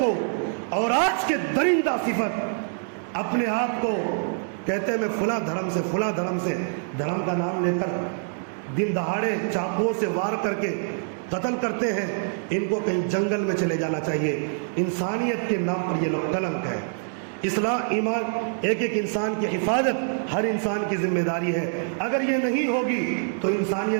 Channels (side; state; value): left; silent; digital silence